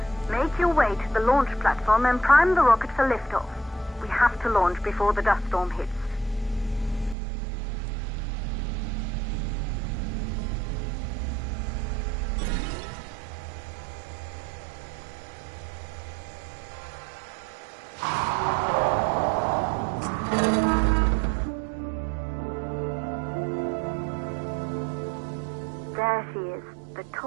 Make your way to the launch platform and prime the rocket for liftoff. We have to launch before the dust storm hits. There she is, the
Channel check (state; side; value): drops out; left; at 7.2 s